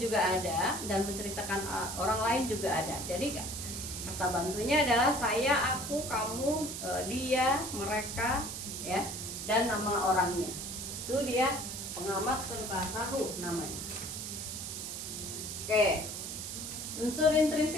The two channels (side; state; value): right; noise; hiss, 6 dB below the sound